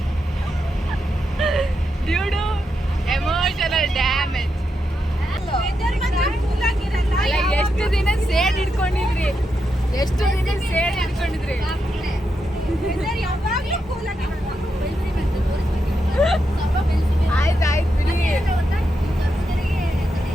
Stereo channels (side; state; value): both; normal; correlation 0.84